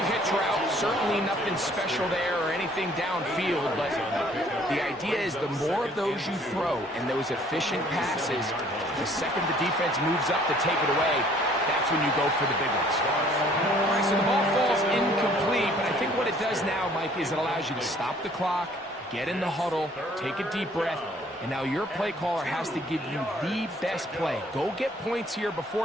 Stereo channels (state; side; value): normal; both; correlation 0.58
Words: hitch route. Certainly nothing special there or anything downfield, but the idea is the more of those you throw and those efficient passes, the second the defense moves up to take it away, that's when you go for the big ones. All right, so the ball falls incomplete, but I think what it does now, Mike, is it allows you to stop the clock, get in the huddle, take a deep breath, and now your play caller has to give you the best play. Go get points here